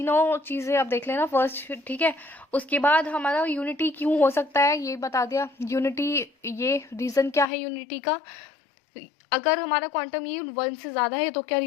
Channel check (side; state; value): right; drops out; at 7.5 s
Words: चीज़ें आप देख लेना फर्स्ट, ठीक है। उसके बाद हमारा यूनिटी क्यों हो सकता है ये बता दिया, यूनिटी ये रीज़न क्या है यूनिटी का। अगर हमारा क्वांटम यील्ड 1 से ज़्यादा है तो क्या